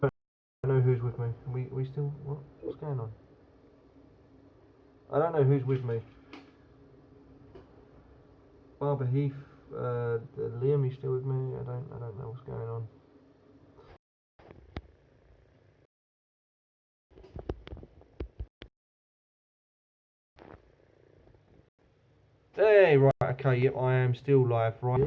I don't know who's with me. We still. What's going on? I don't know who's with me. Barber Heath, Liam, you still with me? I don't know what's going on. Hey, right, okay, yep, I am still live, right,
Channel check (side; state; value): both; identical; correlation 1.00